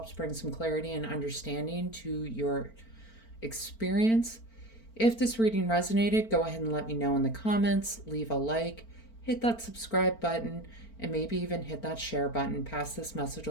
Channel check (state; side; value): late; right; 4.4 ms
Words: bring some clarity and understanding to your experience. If this reading resonated, go ahead and let me know in the comments, leave a like, hit that subscribe button, and maybe even hit that share button. Pass this message